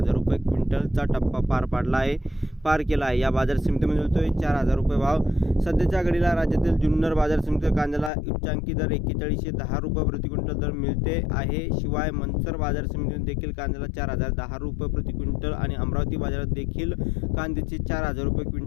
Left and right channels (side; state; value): right; drops out; at 8.1 s